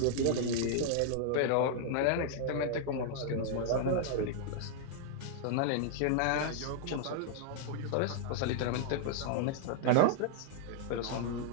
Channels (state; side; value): different; both; correlation -0.01